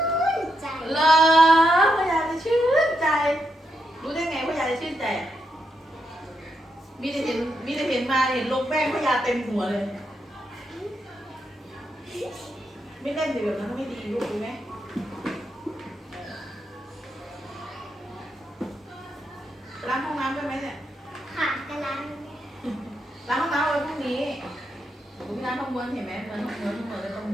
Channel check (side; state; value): both; normal; correlation 0.82